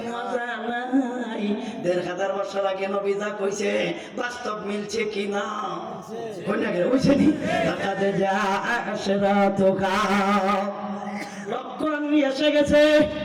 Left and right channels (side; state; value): both; identical; correlation 1.00